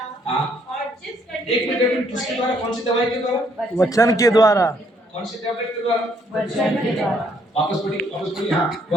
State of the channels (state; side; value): normal; both; correlation 0.68